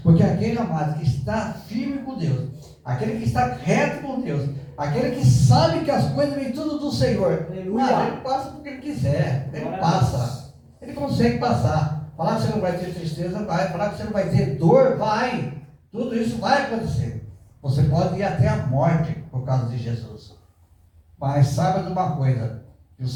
Porque aquele amado que está firme com Deus, aquele que está reto com Deus, aquele que sabe que as coisas vêm tudo do Senhor, ele passa porque ele quiser, ele passa, ele consegue passar. Falar que você não vai ter tristeza, vai. Falar que você não vai ter dor, vai. Tudo isso vai acontecer. Você pode ir até a morte por causa de Jesus. Mas saiba de uma coisa, que o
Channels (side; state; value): both; identical; correlation 1.00